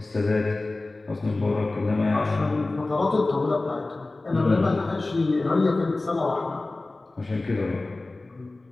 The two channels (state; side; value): quieter; right; 3.1 dB